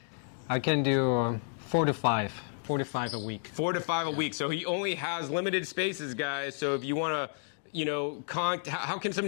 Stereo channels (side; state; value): right; silent; digital silence